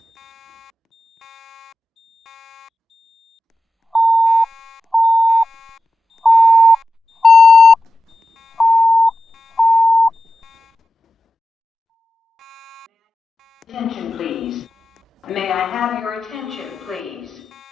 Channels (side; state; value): both; normal; correlation 0.91